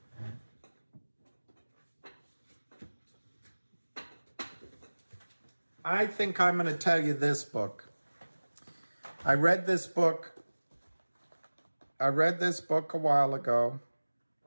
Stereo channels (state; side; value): inverted; both; correlation -1.00